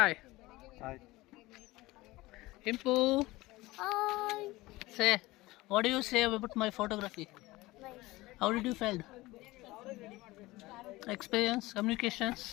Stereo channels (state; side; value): quieter; right; 19.6 dB